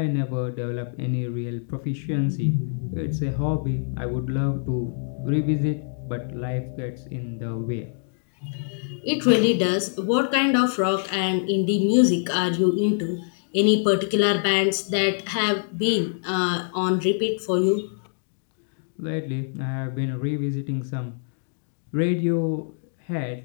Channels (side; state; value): right; silent; digital silence